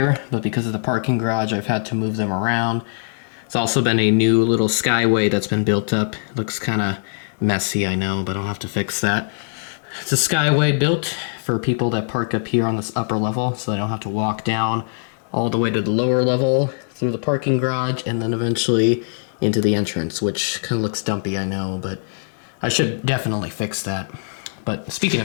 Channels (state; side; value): silent; right; digital silence